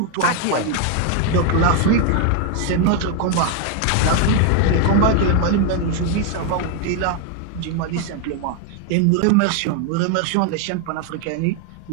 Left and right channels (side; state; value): both; different; correlation 0.00